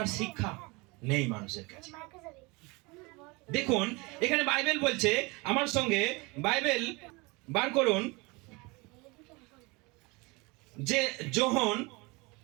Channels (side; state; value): left; quieter; 26.2 dB